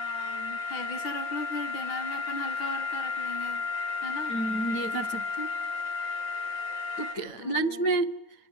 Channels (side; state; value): right; late; 9.4 ms